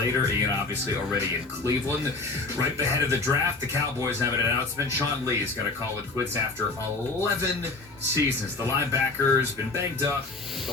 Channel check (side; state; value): right; quieter; 3.5 dB